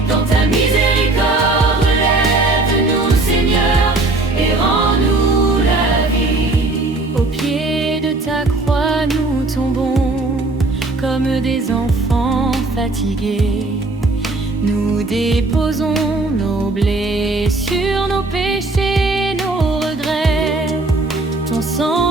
Dans ta miséricorde, relève-nous, Seigneur, et rends-nous la vie. Au pied de ta croix, nous tombons comme des enfants fatigués. Nous déposons nos blessures, nos péchés.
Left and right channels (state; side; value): quieter; left; 3.1 dB